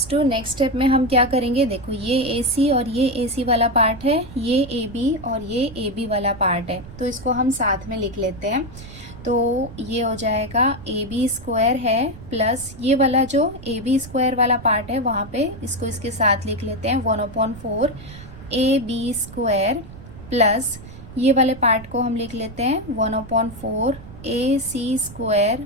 to next step में हम क्या करेंगे, देखो ये ए सी और ये ए सी वाला पार्ट है, ये ए बी और ये ए बी वाला पार्ट है, तो इसको हम साथ में लिख लेते हैं। तो ये हो जाएगा ए बी स्क्वायर है प्लस ये वाला जो ए बी स्क्वायर वाला पार्ट है वहाँ पे इसको इसके साथ लिख लेते हैं 1/4 ए बी स्क्वायर प्लस ये वाले पार्ट को हम लिख लेते हैं 1/4 ए C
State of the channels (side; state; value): right; noise; rumble, 16 dB below the sound